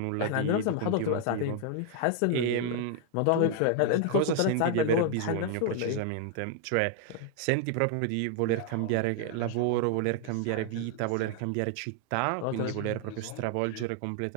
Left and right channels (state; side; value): different; both; correlation 0.00